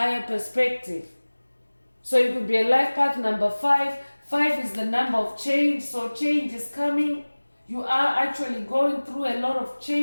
perspective. So you could be a life path number 5. 5 is the number of change, so change is coming. You are actually going through a lot of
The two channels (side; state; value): both; inverted; correlation -1.00